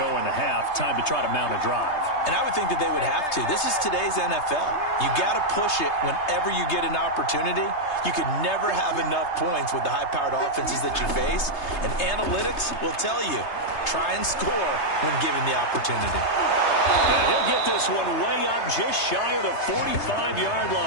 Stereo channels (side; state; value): right; late; 3.3 ms